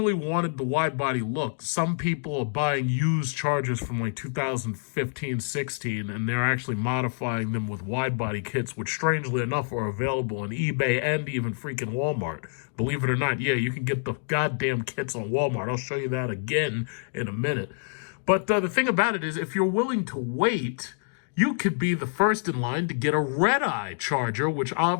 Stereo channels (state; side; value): silent; right; digital silence